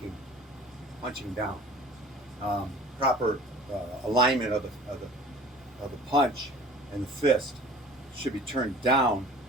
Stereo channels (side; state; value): both; normal; correlation 0.46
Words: punching down. Proper alignment of the punch and the fist should be turned down